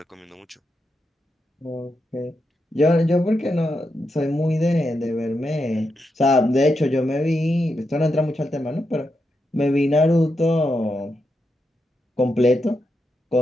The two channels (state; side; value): normal; both; correlation 0.85